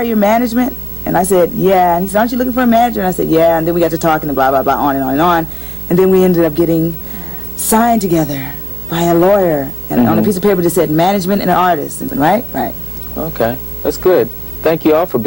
your management?" And I said, "Yeah." And he said, "Aren't you looking for a manager?" And I said, "Yeah." And then we got to talking and blah, blah, blah, on and on and on. And then we ended up getting signed together by a lawyer, and on a piece of paper that said management and an artist, right? Right. Okay, that's good. Thank you all for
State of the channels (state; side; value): normal; both; correlation 0.97